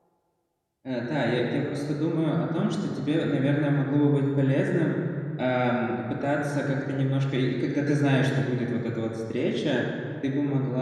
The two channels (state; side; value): identical; both; correlation 1.00